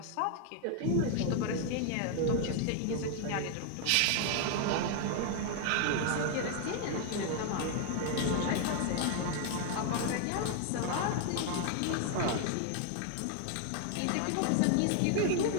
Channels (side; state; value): both; different; correlation 0.00